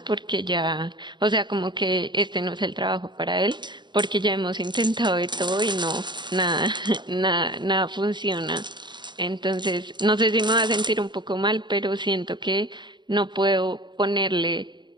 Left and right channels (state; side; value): late; left; 0.22 ms